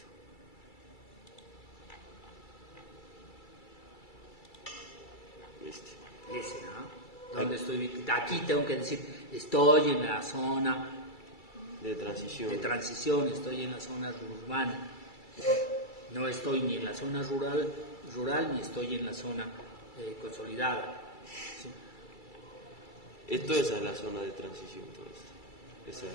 Ese, ¿no? ¿Dónde estoy ubicado? Aquí tengo que decir, estoy en la zona De transición. de transición, estoy en la zona urbana. No estoy ni en la zona rural ni estoy en la zona consolidada. ¿Sí? Esto es la zona de transición, todo esto.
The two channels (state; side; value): late; right; 2.3 ms